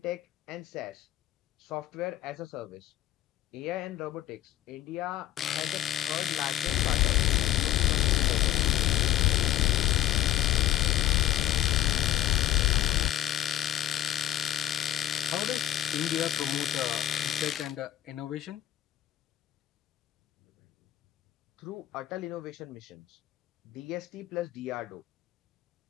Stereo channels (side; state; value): right; quieter; 12.9 dB